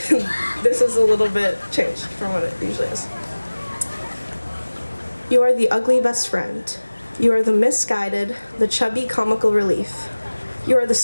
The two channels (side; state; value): both; inverted; correlation -1.00